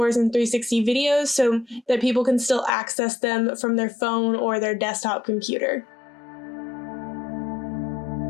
in 360 videos so that people can still access them from their phone or their desktop computer.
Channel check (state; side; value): drops out; right; at 2.7 s